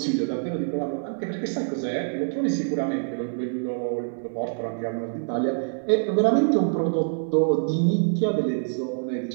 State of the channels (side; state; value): left; silent; digital silence